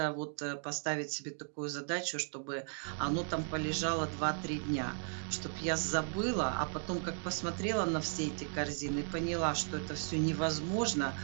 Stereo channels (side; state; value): left; silent; 54 dB below the other